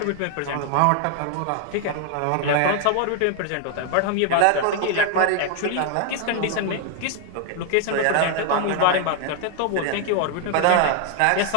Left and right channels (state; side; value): different; both; correlation 0.00